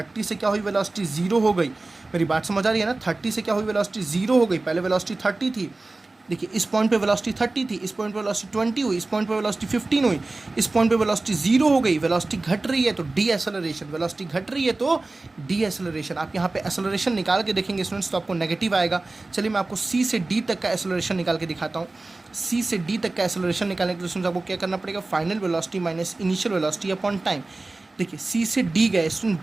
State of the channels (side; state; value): left; quieter; 3.2 dB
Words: से क्या हुई, वेलोसिटी 0 हो गई। मेरी बात समझ आ रही है ना। 30 से क्या हुई, वेलोसिटी 0 हो गई। पहले वेलोसिटी 30 थी, देखिए इस पॉइंट पे वेलोसिटी 30 थी, इस पॉइंट पे वेलोसिटी 20 हुई, इस पॉइंट पे वेलोसिटी 15 हुई, इस पॉइंट पे वेलोसिटी 0 हो गई। वेलोसिटी घट रही है तो डी एक्सेलरेशन, वेलोसिटी घट रही है तो डी एक्सेलरेशन। आप यहाँ पे एक्सेलरेशन निकाल के देखेंगे स्टूडेंट्स तो आपको नेगेटिव आएगा। चलिए मैं आपको सी से डी तक का एक्सेलरेशन निकाल के दिखाता हूँ। सी से डी तक का एक्सेलरेशन निकालने के लिए स्टूडेंट्स आपको क्या करना पड़ेगा, final velocity minus initial velocity upon time. देखिए सी से डी गए student,